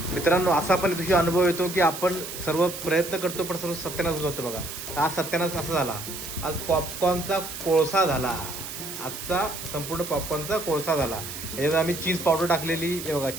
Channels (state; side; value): noise; right; hiss, 9 dB below the sound